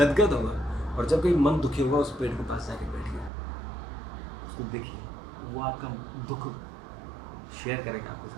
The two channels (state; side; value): drops out; left; at 3.3 s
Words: होगा। और जब कहीं मन दुखी होगा उस पेड़ के पास जाके बैठिए, उसको देखिए, वो आपका दुख शेयर करेगा आपके